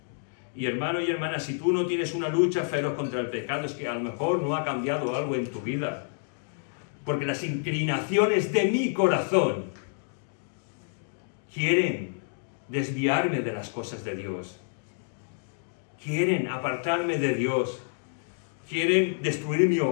Y hermano y hermana, si tú no tienes una lucha feroz contra el pecado, es que a lo mejor no ha cambiado algo en tu vida. Porque las inclinaciones de mi corazón quieren desviarme de las cosas de Dios. Quieren apartarme de Dios. Quieren destruir mi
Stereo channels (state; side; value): silent; right; digital silence